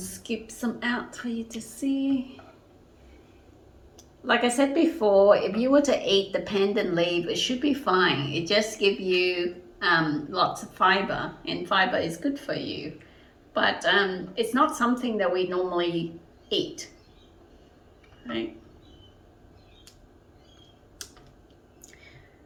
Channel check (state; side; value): identical; both; correlation 1.00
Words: some out for you to see. like I said before, if you were to eat the pandan leaf, it should be fine. It just gives you lots of fiber, and fiber is good for you. But it's not something that we normally eat, right?